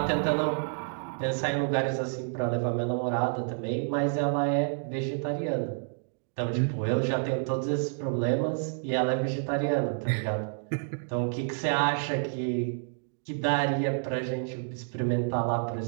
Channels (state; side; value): silent; left; digital silence